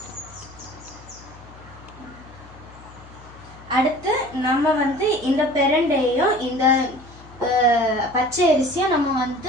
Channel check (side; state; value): left; noise; hum, 21 dB below the sound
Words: அடுத்து நம்ம இந்த பிரண்டையும் இந்த பச்சை அரிசியும்